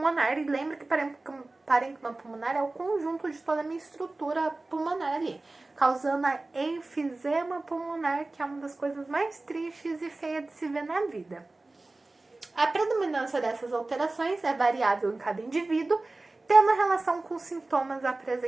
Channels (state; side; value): quieter; left; 3.1 dB